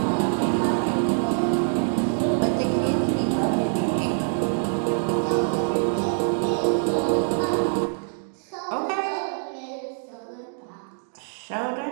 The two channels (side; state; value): left; silent; digital silence